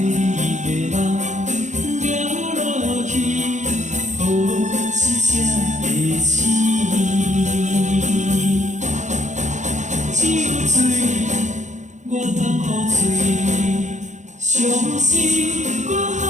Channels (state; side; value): late; left; 0.35 ms